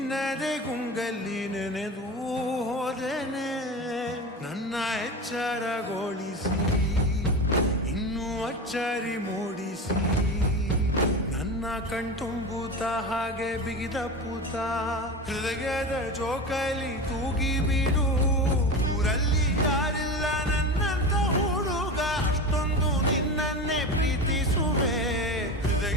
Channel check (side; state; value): both; normal; correlation 0.26